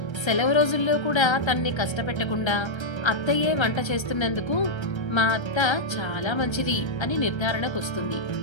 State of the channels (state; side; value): late; right; 1.3 ms